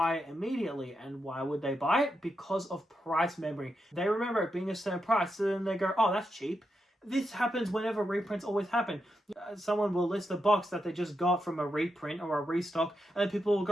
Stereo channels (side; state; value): both; normal; correlation 0.85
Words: it immediately. And why would they buy it? Because of price memory. They remember it being a certain price, so then they go, oh, that's cheap. This happens whenever reprints always happen. Someone will list a box that they just got from a reprint or a restock, and then people will